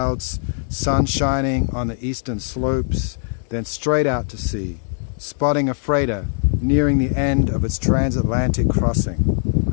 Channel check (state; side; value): silent; right; 63 dB below the other